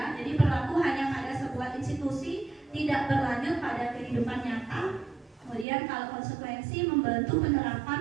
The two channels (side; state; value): left; drops out; at 5.7 s